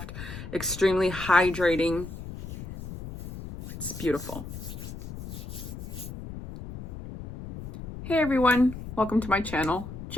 extremely hydrating. It's beautiful. Hey everyone, welcome to my channel.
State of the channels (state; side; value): noise; left; rumble, 10 dB below the sound